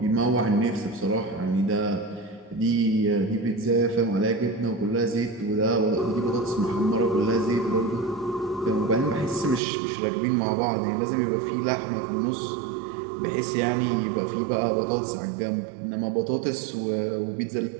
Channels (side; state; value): left; drops out; at 9.6 s